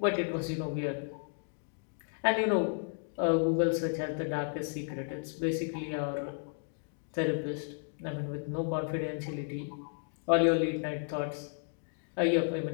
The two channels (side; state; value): right; silent; 56 dB below the other